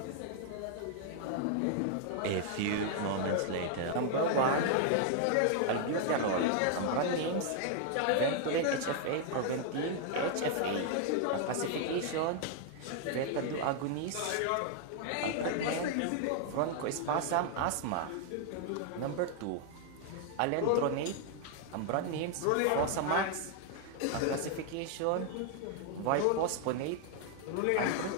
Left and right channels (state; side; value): different; both; correlation 0.00